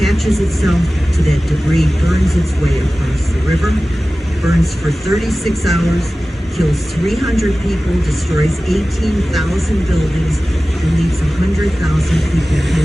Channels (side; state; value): both; normal; correlation 0.96